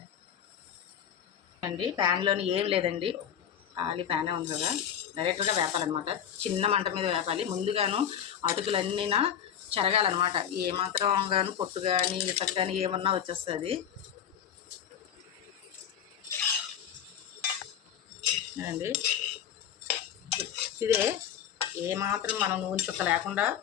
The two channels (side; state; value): right; quieter; 9.1 dB